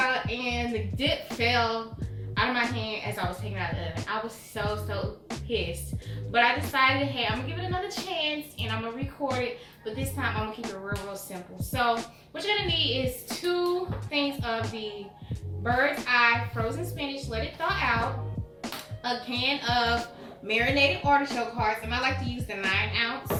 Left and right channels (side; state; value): both; identical; correlation 1.00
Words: and the dip fell out of my hand as I was taking it out of the oven. I was so pissed. But I decided, hey, I'm gonna give it another chance and I'm gonna record it, but this time I'm gonna keep it real simple. So what you're gonna need is 2 things of the bird's eye frozen spinach, let it thaw out, a can of marinated artichoke hearts, and I like to use the